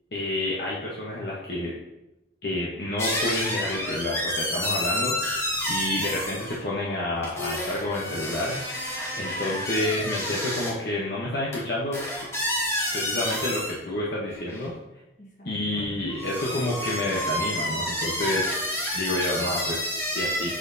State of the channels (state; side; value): normal; both; correlation 0.16